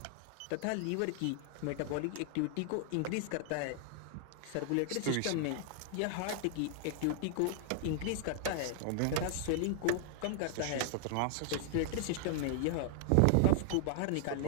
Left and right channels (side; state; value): both; different; correlation 0.00